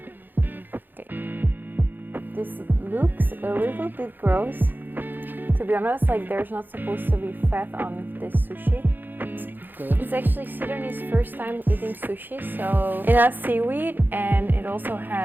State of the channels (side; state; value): left; late; 0.091 ms